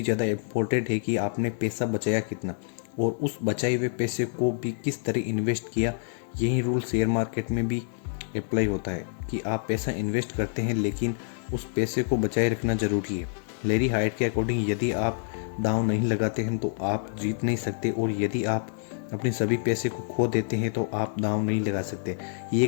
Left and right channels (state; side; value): silent; right; digital silence